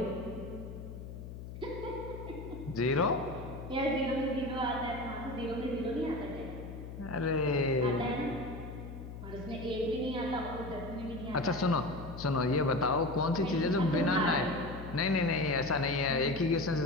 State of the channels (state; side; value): noise; left; hum, 10 dB below the sound